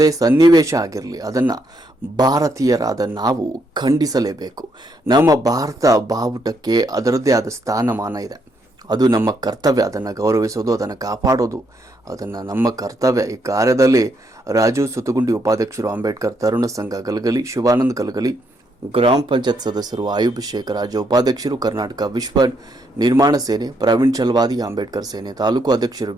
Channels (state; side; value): normal; both; correlation 0.75